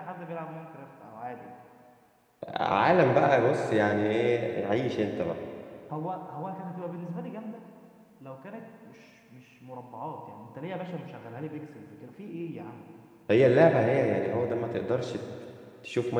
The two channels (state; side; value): identical; both; correlation 1.00